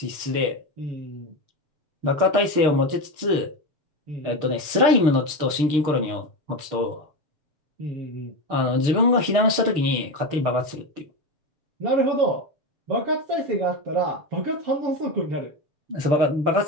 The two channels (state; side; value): late; left; 6.6 ms